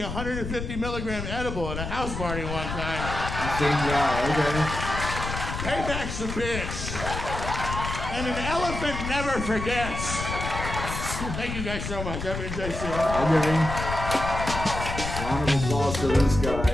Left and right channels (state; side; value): noise; left; rumble, 5 dB below the sound